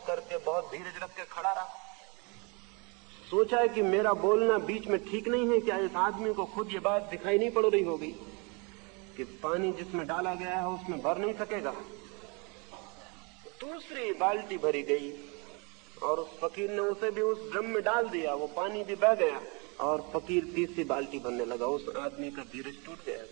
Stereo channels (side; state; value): left; quieter; 31.5 dB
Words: करके, बहुत धीरज रख के खड़ा रहा। सोचा कि मेरा बोलना बीच में ठीक नहीं है। क्या इस आदमी को खुद ये बात दिखाई नहीं पड़ रही होगी कि पानी जिसमें डाला गया है उसमें भर नहीं सकेगा? दूसरी बाल्टी भरी गई और उस फकीर ने उसे भी उस ड्रम में डाल दिया। वो पानी भी बह गया और फकीर तीसरी बाल्टी भरने लगा। उस आदमी का धीरज टूट गया,